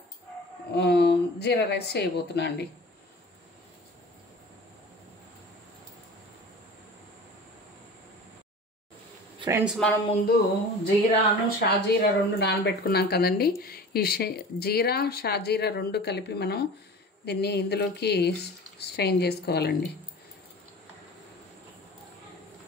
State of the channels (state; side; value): normal; both; correlation 0.39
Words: జీరా రైస్ చేయబోతున్నా అండి. ఫ్రెండ్స్, మనం ముందు జీరాను షాజీరా రెండు నానబెట్టుకున్నాం కదండి. ఈ జీరా షాజీరా రెండు కలిపి మనం దీన్ని ఇందులోకి స్ట్రెయిన్ చేసుకోవాలండి.